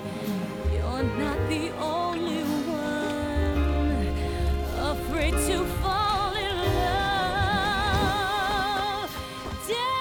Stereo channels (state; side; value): identical; both; correlation 1.00